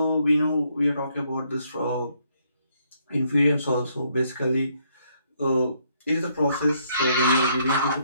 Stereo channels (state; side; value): inverted; both; correlation -0.71